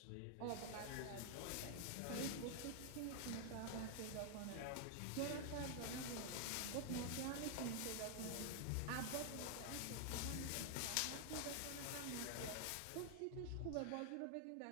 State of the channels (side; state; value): both; different; correlation 0.00